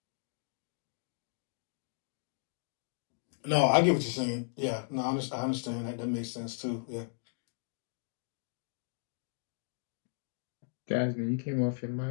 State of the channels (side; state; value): right; silent; digital silence